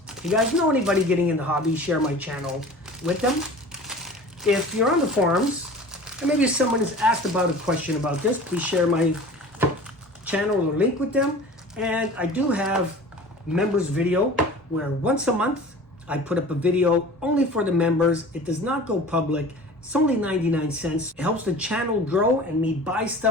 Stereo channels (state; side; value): normal; both; correlation 0.41